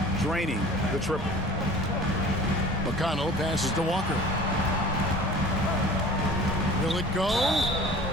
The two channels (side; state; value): both; normal; correlation 0.43